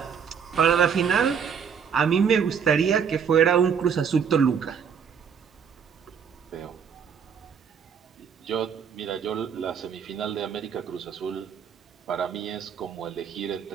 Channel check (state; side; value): quieter; left; 7.1 dB